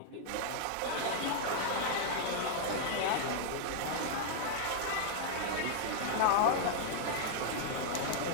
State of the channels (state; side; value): different; both; correlation -0.01